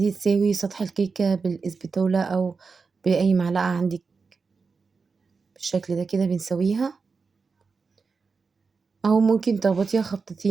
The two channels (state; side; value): quieter; left; 4.8 dB